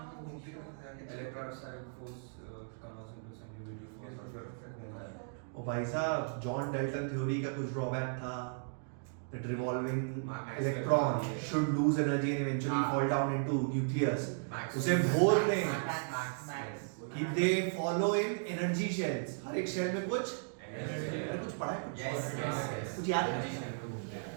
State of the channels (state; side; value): silent; left; digital silence